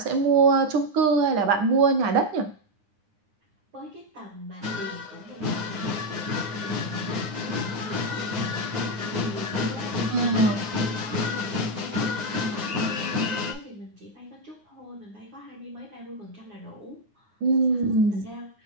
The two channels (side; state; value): left; late; 9.7 ms